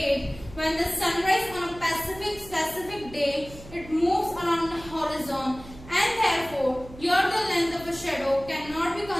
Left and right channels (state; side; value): noise; right; hum, 17 dB below the sound